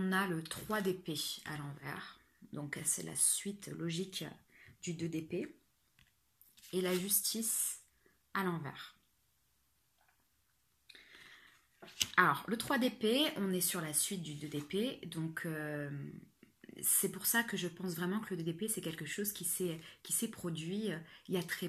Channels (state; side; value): identical; both; correlation 1.00